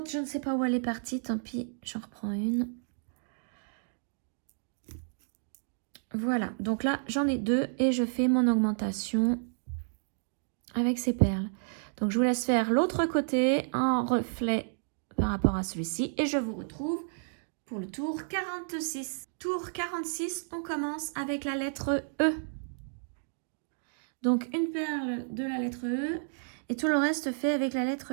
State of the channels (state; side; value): silent; left; digital silence